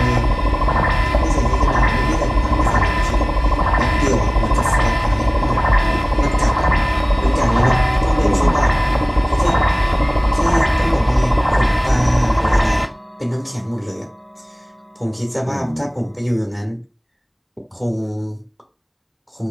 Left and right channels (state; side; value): identical; both; correlation 1.00